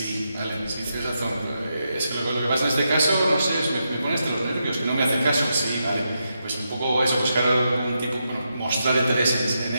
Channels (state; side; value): inverted; both; correlation -0.84